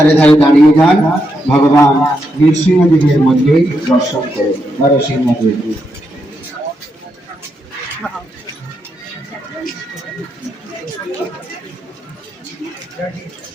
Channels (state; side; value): normal; both; correlation 0.82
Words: ধারে দাঁড়িয়ে যান, ভগবান নৃসিংহদেবের মন্দির দর্শন করুন। নরসিংহদেব